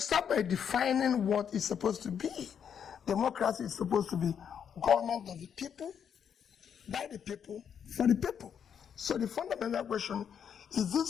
by defining what it's supposed to be. Democracy is supposed to be government of the people, by the people, for the people. So the fundamental question, is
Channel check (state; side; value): quieter; right; 8.0 dB